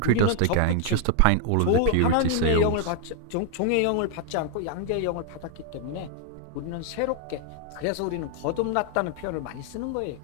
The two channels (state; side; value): different; both; correlation 0.00